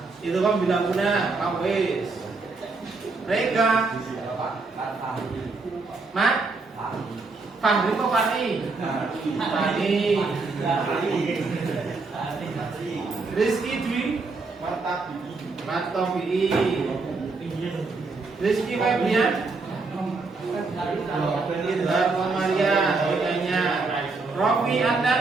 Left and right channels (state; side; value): quieter; left; 3.9 dB